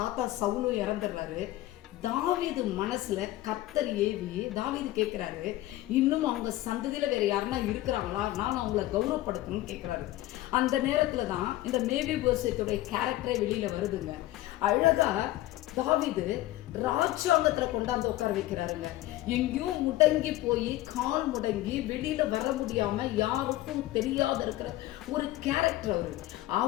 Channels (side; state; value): right; quieter; 16.1 dB